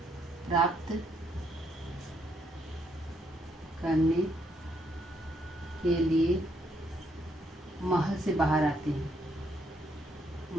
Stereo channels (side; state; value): both; normal; correlation 0.73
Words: प्राप्त करने के लिए महल से बाहर आते हैं।